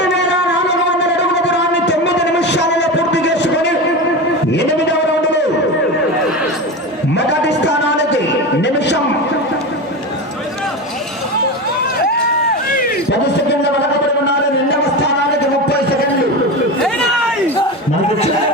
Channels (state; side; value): normal; both; correlation 0.23